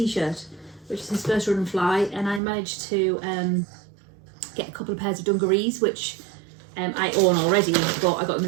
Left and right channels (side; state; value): left; drops out; at 2.4 s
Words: which is his first Run and Fly, and I managed to get a couple of pairs of dungarees, which I own already, but I got them